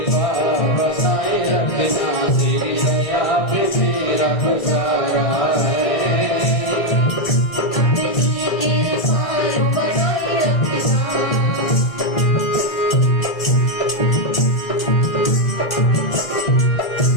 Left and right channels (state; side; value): late; right; 1.6 ms